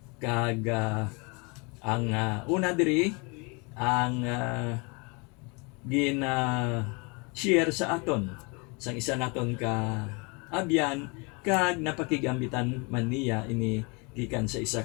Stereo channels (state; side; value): quieter; right; 30.9 dB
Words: Kag ang una diri ang share sa aton sang isa naton ka abyan kag napakigambitan man niya ini gikan sa isa